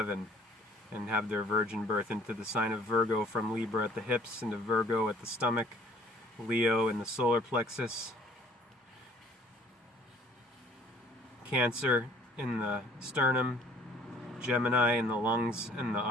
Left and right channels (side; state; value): both; normal; correlation 0.55